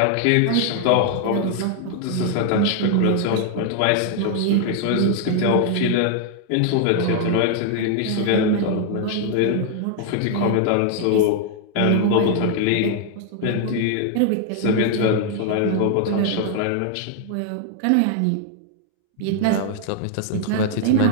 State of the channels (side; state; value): both; different; correlation 0.00